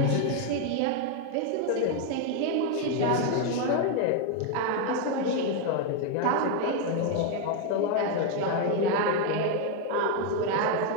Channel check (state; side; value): different; both; correlation 0.01